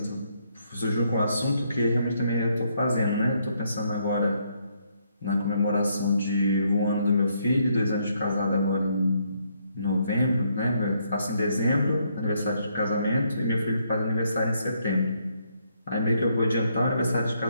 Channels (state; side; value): inverted; both; correlation -0.73